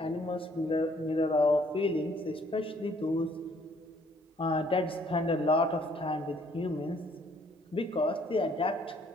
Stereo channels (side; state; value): both; normal; correlation 0.63